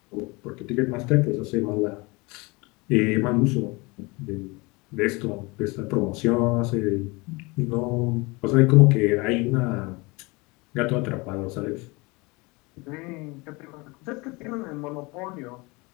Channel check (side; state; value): right; quieter; 25.8 dB